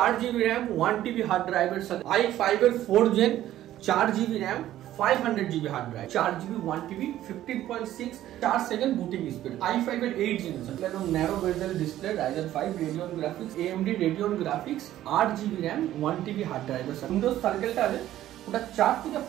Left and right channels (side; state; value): left; quieter; 13.2 dB